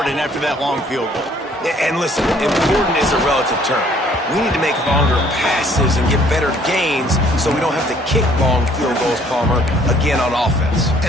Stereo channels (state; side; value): normal; both; correlation 0.60